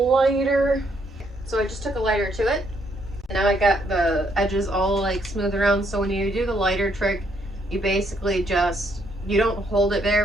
So I just took a lighter to it. And now I got the edges all like smooth around. So when you do the lighter trick, you basically just, you don't hold it very,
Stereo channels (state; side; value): normal; both; correlation 0.72